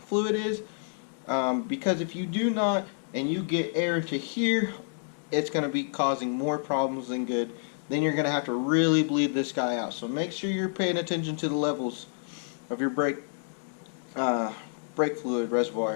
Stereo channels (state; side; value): silent; right; digital silence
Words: is, because if you do not and you get air to here, it's going to be causing more problems than good. then you're going to have to really bleed this guy out. So make sure you're paying attention to the levels of your brake fluid